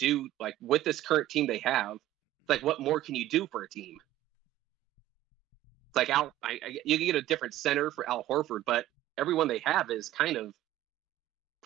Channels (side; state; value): left; quieter; 14.3 dB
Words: like with this current team they have. Like, what more can you do for a team? Like you can get a different center for Al Horford, but everyone they have is kind of